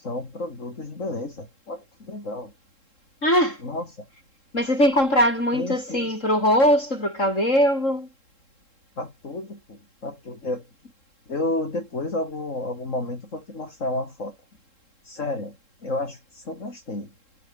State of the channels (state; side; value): late; right; 3.7 ms